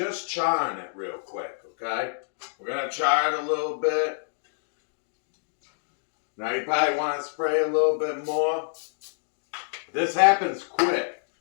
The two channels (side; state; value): right; silent; digital silence